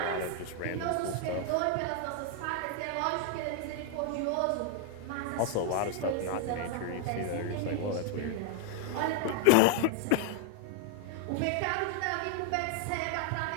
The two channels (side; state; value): both; different; correlation 0.00